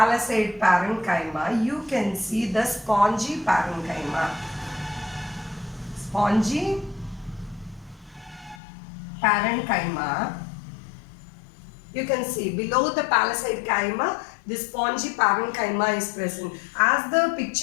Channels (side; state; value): right; drops out; at 8.6 s